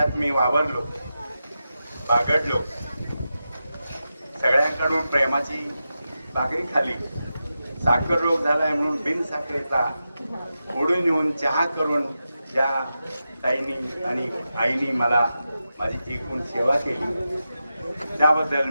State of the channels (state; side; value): inverted; both; correlation -0.90